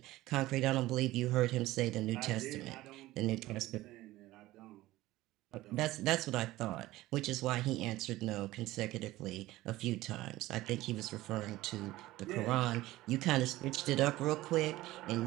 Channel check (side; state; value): left; quieter; 17.2 dB